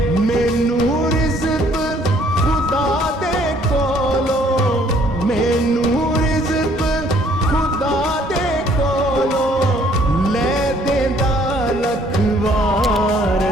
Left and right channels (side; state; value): both; normal; correlation 0.61